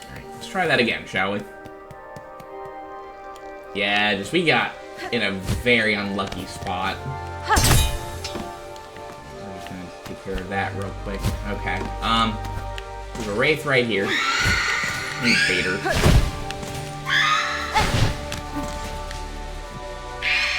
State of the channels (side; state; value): both; identical; correlation 1.00